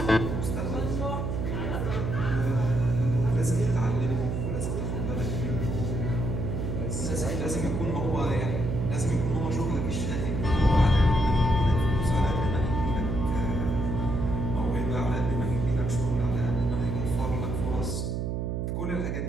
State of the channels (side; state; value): right; noise; hum, 1 dB below the sound